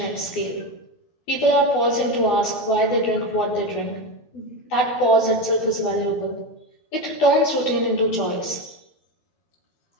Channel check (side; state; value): right; late; 12 ms